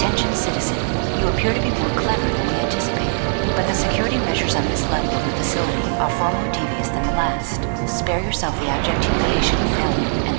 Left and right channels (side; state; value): left; silent; digital silence